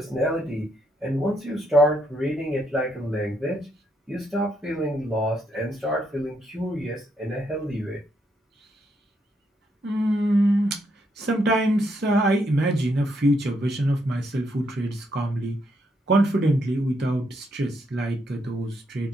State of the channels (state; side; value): normal; both; correlation 0.76